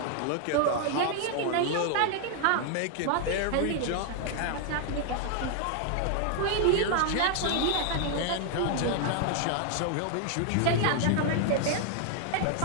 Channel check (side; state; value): both; different; correlation 0.00